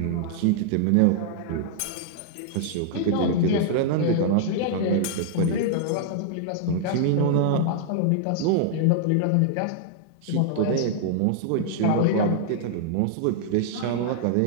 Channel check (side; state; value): both; different; correlation -0.01